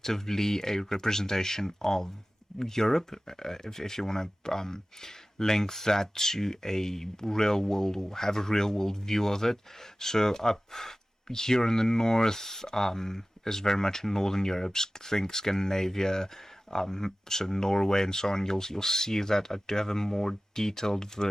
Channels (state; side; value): normal; both; correlation 0.97